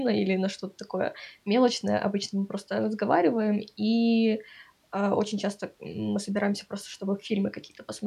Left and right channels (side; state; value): both; identical; correlation 1.00